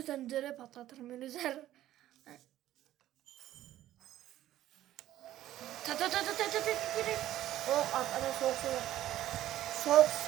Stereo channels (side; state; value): left; quieter; 13.6 dB